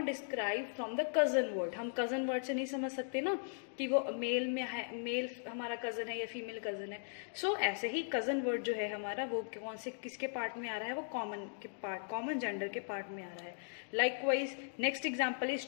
describe from the cousin word. हम कजन वर्ड से नहीं समझ सकते ना कि वो मेल में है, मेल हमारा कजन है या फीमेल कजन है. सो ऐसे ही कजन वर्ड जो है हमारा वो कौन से किसके पार्ट में आ रहा है, वो कॉमन के पार्ट, कॉमन जेंडर के पार्ट में आ रहा है. Likewise next example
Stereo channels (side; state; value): right; silent; digital silence